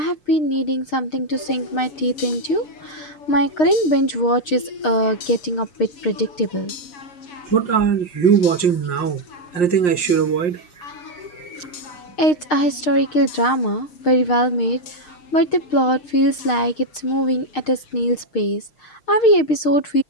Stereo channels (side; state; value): right; late; 6.5 ms